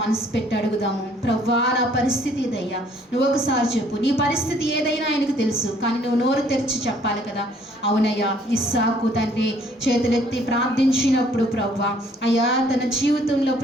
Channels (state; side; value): normal; both; correlation 0.61